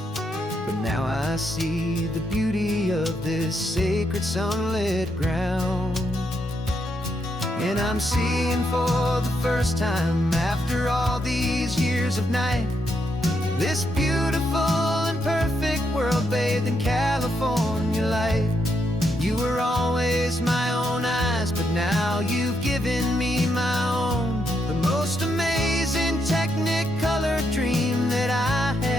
But now I see the beauty of this sacred sunlit ground. And I'm seeing for the first time, after all these years of night, this beautiful and perfect world bathed in California light. You were always my own eyes, but now you've given me my own, the most amazing technicolor dream that I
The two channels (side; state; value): both; normal; correlation 0.79